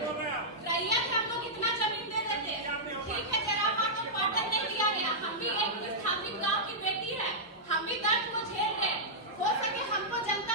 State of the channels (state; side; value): normal; both; correlation -0.10